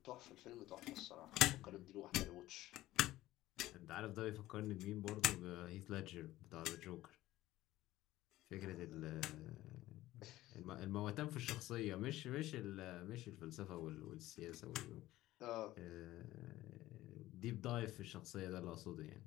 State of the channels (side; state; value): right; quieter; 16.0 dB